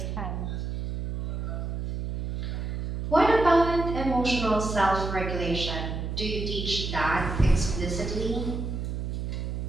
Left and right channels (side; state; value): right; noise; hum, 4 dB below the sound